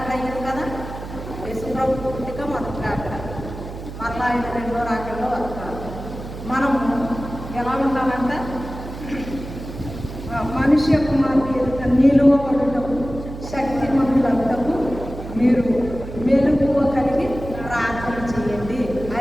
అయ్యింది కదా. యేసుప్రభు పుట్టిక మొదటి రాకడ, మరలా ఆయన రెండో రాకడలో వస్తారు. మనము ఎలా ఉండాలంట? మనుష్య కుమారుని ఎదుట నిలువబడుటకు శక్తిమంతులంతకు మీరు మెలుగువ కలిగి ప్రార్థన చేయండి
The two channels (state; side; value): noise; right; hum, 11 dB below the sound